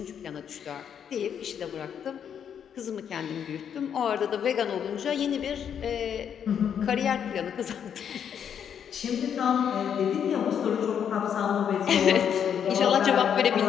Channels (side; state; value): right; quieter; 8.3 dB